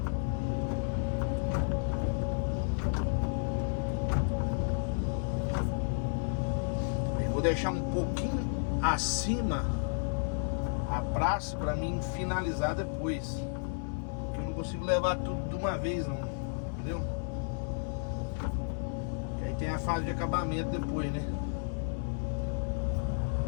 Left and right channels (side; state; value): right; silent; 56 dB below the other